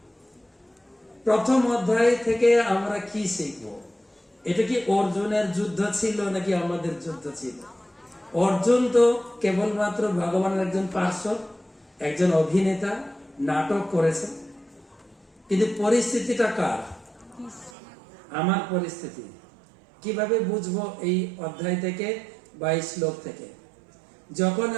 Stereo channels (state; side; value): drops out; left; at 17.7 s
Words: প্রথম অধ্যায় থেকে আমরা কি শিখব? এটা কি অর্জুনের যুদ্ধ ছিল নাকি আমাদের যুদ্ধ ছিল? অর্জুন তো কেবলমাত্র ভগবানের একজন পার্শ্ব, একজন অভিনেতা, নাটক করেছেন। কিন্তু পরিস্থিতিটা কার? আমার পরিস্থিতি। কিভাবে বুঝবো? এই অধ্যায় থেকে 22 শ্লোক থেকে। যখন